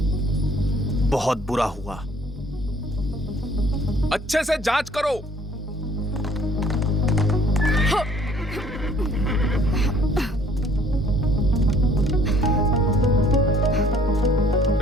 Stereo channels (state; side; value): normal; both; correlation 0.58